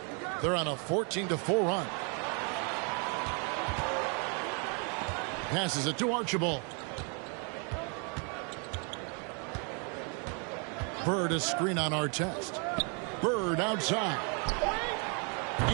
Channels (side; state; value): left; quieter; 37.4 dB